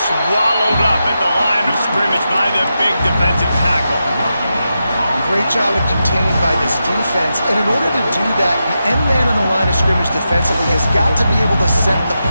swallowed up at the line of scrimmage by the big defensive tackle. Great job of contained by this defense. And in order to do that, the end man on the line of scrimmage defensively has got to be able to set the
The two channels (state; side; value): inverted; both; correlation -0.88